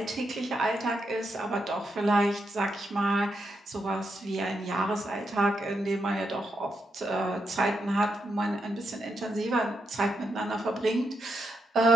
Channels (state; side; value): normal; both; correlation 0.82